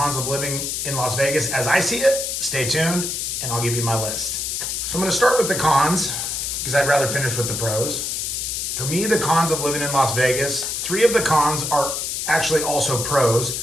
of living in Las Vegas as I see it, stay tuned and I'll give you my list. So I'm going to start with the cons because I'd rather finish with the pros. For me, the cons of living in Las Vegas, 3 of the cons are actually also pros.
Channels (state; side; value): noise; left; hiss, 2 dB below the sound